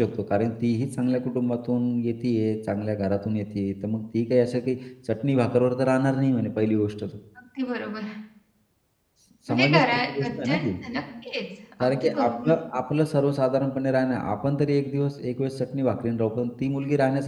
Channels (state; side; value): identical; both; correlation 1.00